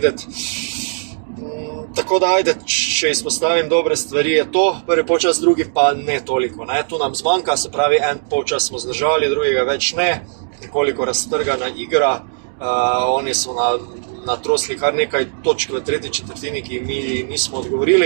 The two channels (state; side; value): silent; left; digital silence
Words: Tako da, ajde, če izpostavim dobre stvari, je to prvi polčas, drugi pa ne toliko. Ne? Tu nam zmanjka, se pravi, en polčas smo zdržali, drugega več ne, nekoliko raztrgana igra. Oni so natrosli kar nekaj točk v tretji četrtini, ki mi nismo